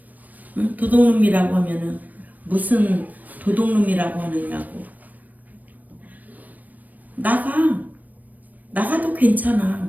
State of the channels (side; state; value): left; late; 0.081 ms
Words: 응? 도둑놈이라고 하면은 무슨 도둑놈이라고 하느냐고. 나가도